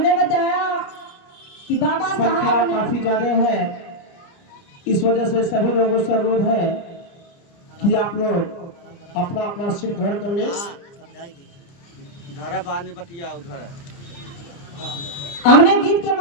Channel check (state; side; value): late; right; 29 ms